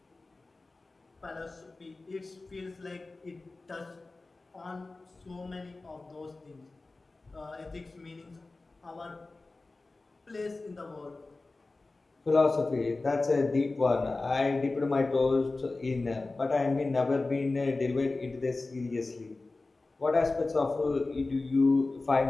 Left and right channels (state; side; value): quieter; right; 3.4 dB